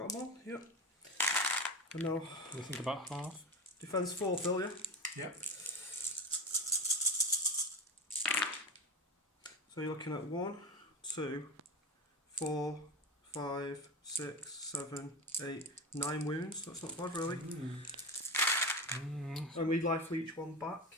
them all? Yep. And now, What do you think about half? defence 4, Phil, yeah? Yep. So you're looking at 1, 2, 4, 5, 6, 7, 8, 9 wounds. That's not bad, really. And we life each one back.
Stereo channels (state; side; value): normal; both; correlation 0.23